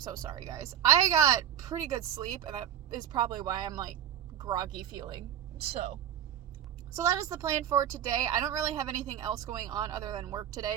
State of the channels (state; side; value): quieter; left; 10.1 dB